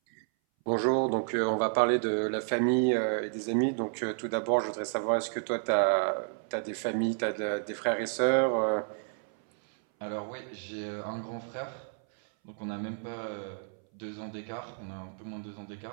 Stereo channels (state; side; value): silent; left; 57 dB below the other